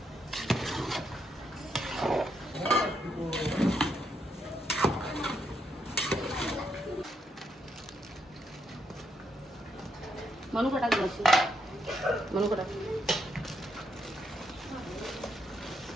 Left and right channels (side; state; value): both; normal; correlation 0.78